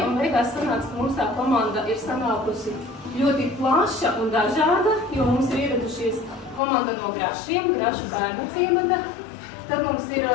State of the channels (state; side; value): drops out; right; at 6.6 s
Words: un beigās sanāca, ka mums tā komanda ir sanākusi ļoti plaša un dažāda, jo mums ir ieradušies komanda no Grašiem, Grašu bērnu ciemata. Tad mums ir